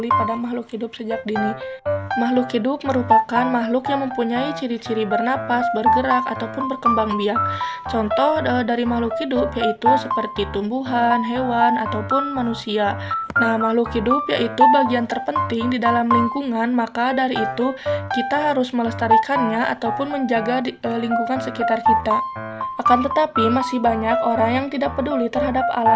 pada makhluk hidup sejak dini. Makhluk hidup merupakan makhluk yang mempunyai ciri-ciri bernapas, bergerak, ataupun berkembang biak. Contoh dari makhluk hidup yaitu seperti tumbuhan, hewan, ataupun manusia. Nah, makhluk hidup yaitu bagian terpenting di dalam lingkungan, maka dari itu kita harus melestarikannya ataupun menjaga lingkungan sekitar kita. Akan tetapi masih banyak orang yang tidak peduli terhadap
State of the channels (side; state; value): both; identical; correlation 1.00